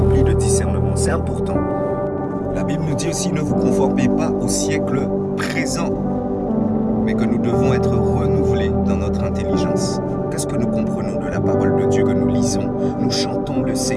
de discernement. C'est important. La Bible nous dit aussi, ne vous conformez pas au siècle présent, mais que nous devons être renouvelés dans notre intelligence. Qu'est-ce que nous comprenons de la parole de Dieu que nous lisons? Nous chantons le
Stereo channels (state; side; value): identical; both; correlation 1.00